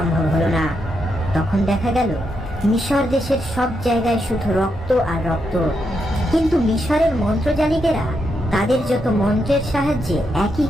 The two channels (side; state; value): both; normal; correlation 0.82